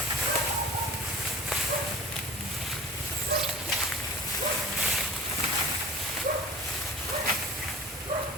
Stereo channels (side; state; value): both; normal; correlation 0.43